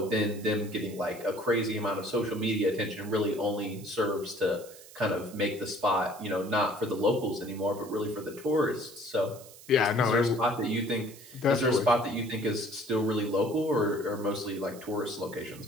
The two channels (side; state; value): right; noise; hiss, 19 dB below the sound